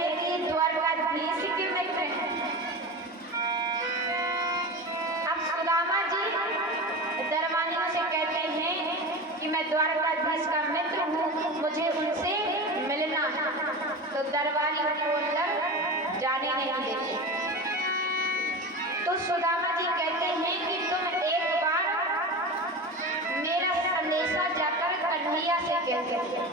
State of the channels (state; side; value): normal; both; correlation 0.28